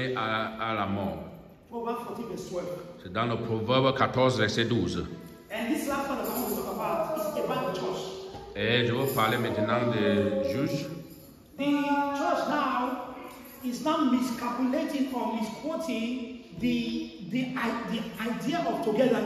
à la mort. Proverbs 14 verse 12. C'est dans le Proverbe 14, verset 12. And this last one that I want to talk about is about the church. Et je vais parler maintenant des juges. The church now is now miscalculating or misquoting the idea of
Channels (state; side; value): identical; both; correlation 1.00